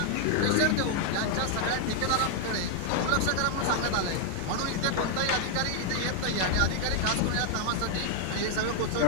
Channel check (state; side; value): different; both; correlation 0.00